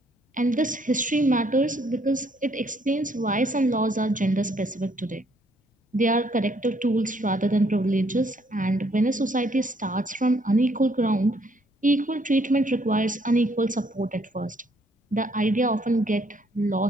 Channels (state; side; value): normal; both; correlation 0.67